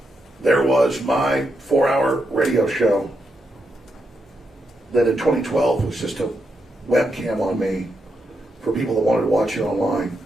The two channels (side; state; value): both; normal; correlation 0.83